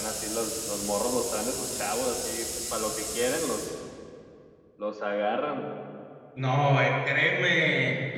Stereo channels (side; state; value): both; identical; correlation 1.00